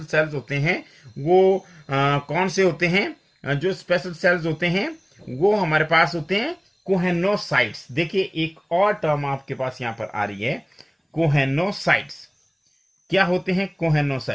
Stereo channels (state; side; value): identical; both; correlation 1.00